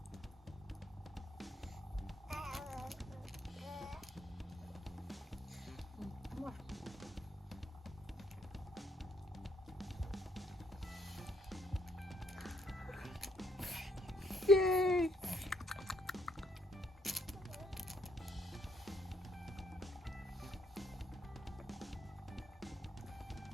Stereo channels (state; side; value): normal; both; correlation 0.71